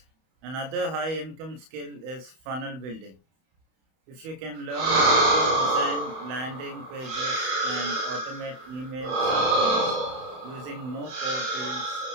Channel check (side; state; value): left; late; 31 ms